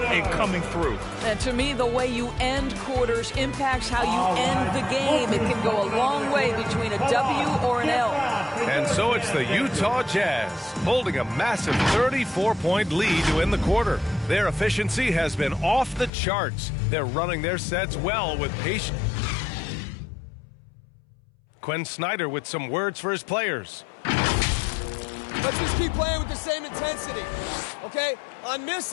coming through. And to me, the way you end quarters impacts how you end the game. It can go a long way between a W or an L. And so it's the Utah Jazz holding a massive 34-point lead to end the quarter. Their efficiency has been off the charts. They're running their sets well with patience. Quinn Snyder with some words for his players. Let's just keep playing with the same intensity, okay? On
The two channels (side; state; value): right; drops out; at 16.1 s